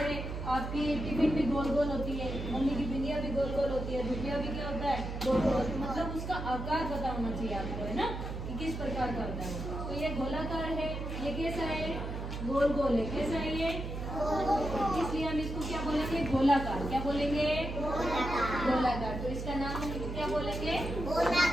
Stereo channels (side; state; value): right; noise; hum, 5 dB below the sound